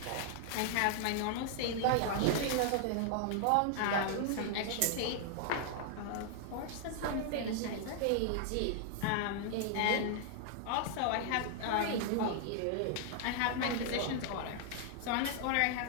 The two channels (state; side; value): different; both; correlation -0.01